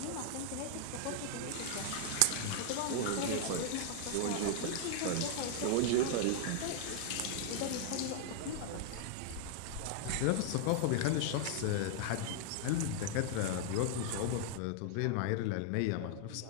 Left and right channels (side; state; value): both; different; correlation 0.00